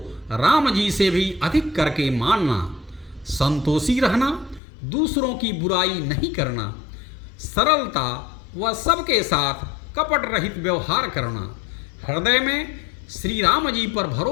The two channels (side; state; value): right; drops out; at 4.6 s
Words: राम जी से भी अधिक करके मानना, संतोषी रहना, दूसरों की बुराई नहीं करना, सरलता व सबके साथ कपट रहित व्यवहार करना, हृदय में श्री राम जी पर